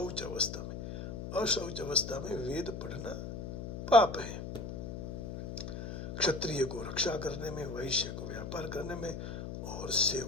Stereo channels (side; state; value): left; noise; hum, 7 dB below the sound